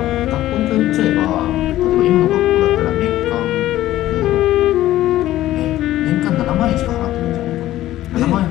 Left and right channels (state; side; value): quieter; right; 14.5 dB